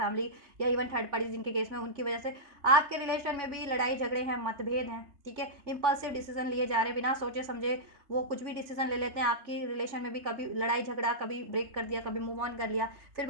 या इवन थर्ड पार्टी जिनके केस में, उनकी वजह से आपके रिलेशन में भी लड़ाई झगड़े हैं, मतभेद हैं, ठीक है, इम्पल्सिव डिसीजन लिए जा रहे हैं, बिना सोचे समझे वो कुछ भी डिसीजन ले लेते हैं। आपकी रिलेशन में भी कभी लड़ाई झगड़ा, कभी ब्रेक कर दिया, कभी मूव ऑन कर लिया, फिर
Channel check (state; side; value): late; left; 3.3 ms